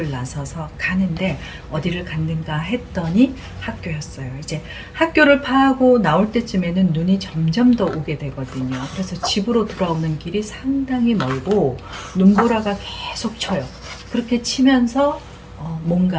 나서서 가는데 어디를 갔는가 했더니 학교였어요. 이제 학교를 파하고 나올 때쯤에는 눈이 점점 더 오게 되거든요. 그래서 집으로 돌아오는 길이 상당히 멀고 눈보라가 계속 쳐요. 그렇게 치면서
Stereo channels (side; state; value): both; identical; correlation 1.00